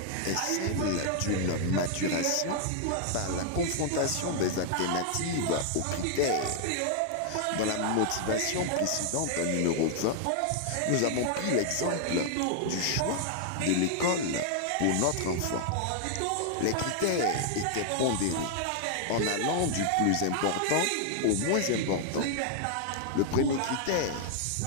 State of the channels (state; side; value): different; both; correlation 0.00